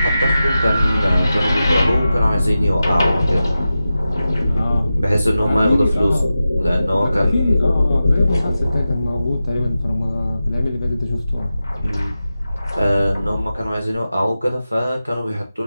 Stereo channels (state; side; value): inverted; both; correlation -0.93